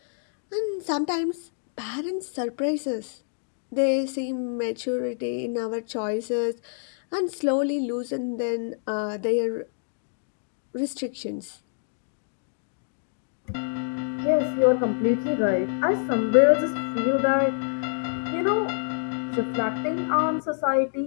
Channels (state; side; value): silent; right; digital silence